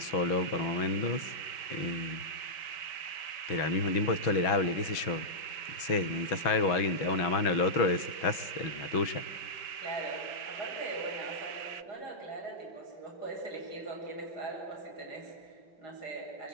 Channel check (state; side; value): late; right; 6.1 ms